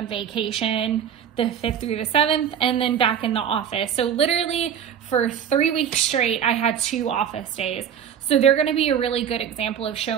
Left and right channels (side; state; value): left; quieter; 8.6 dB